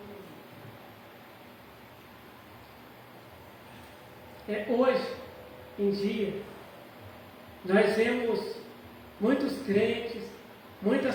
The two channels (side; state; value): both; identical; correlation 1.00